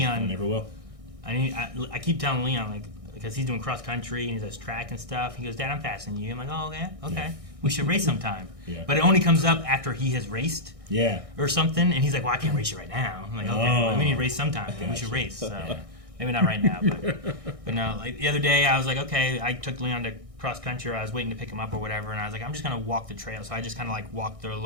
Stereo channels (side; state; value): left; late; 1.6 ms